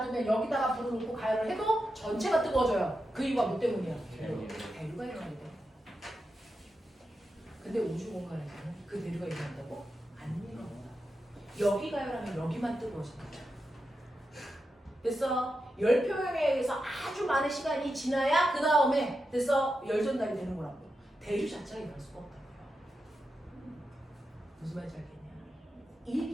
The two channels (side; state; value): both; normal; correlation 0.88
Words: 여기다가 불을 넣고 가열을 해도 전체가 뜨거워져요. 그 이유가 뭐 때문이야? 대류가 일어나야 돼. 근데 우주 공간에서는 그 대류가 일어난다고? 안 일어나. 여기 가열하면 여기만 뜨거워진다. 됐어? 열 표현에 의해서 아주 많은 시간이 지나야 그 다음에 됐어? 열 전달이 되는 거라고. 대류 자체가 일어날 수가 없다고요. 무슨 말인지 알겠냐? 이